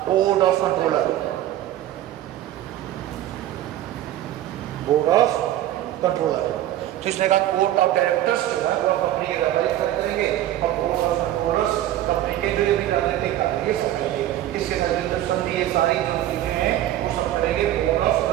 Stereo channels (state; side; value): quieter; left; 13.2 dB